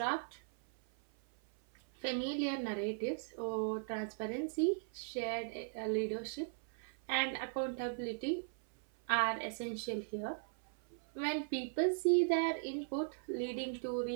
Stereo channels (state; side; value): silent; left; 52 dB below the other